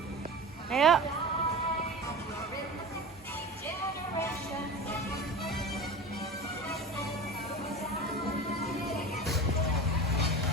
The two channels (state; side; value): normal; both; correlation 0.32